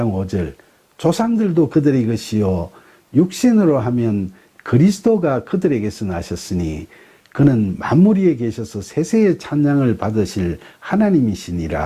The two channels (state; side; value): identical; both; correlation 1.00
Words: 5절 조상들도 그들의 것이요 육신으로 하면 그리스도가 그들에게서 나셨으니 그는 만물 위에 계셔서 세세의 찬양을 받으실